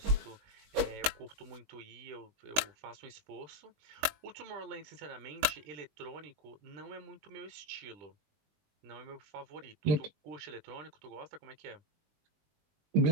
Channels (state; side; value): late; left; 20 ms